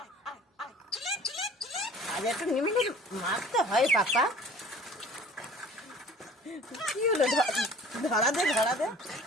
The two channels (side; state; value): both; normal; correlation 0.47